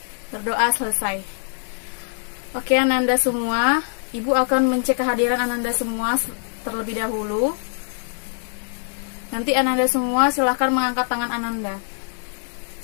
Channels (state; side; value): silent; right; digital silence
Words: Berdoa selesai. Oke, Ananda semua, Ibu akan mencek kehadiran Ananda semua terlebih dahulu. Nanti Ananda semua silahkan mengangkat tangan Ananda.